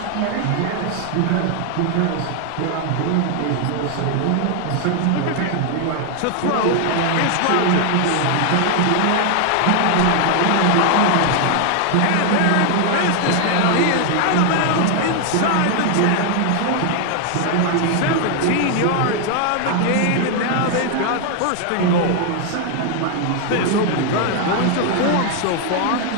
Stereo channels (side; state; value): both; different; correlation 0.00